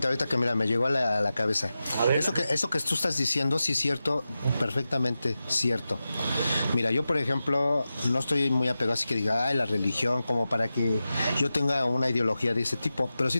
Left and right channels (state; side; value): inverted; both; correlation -0.93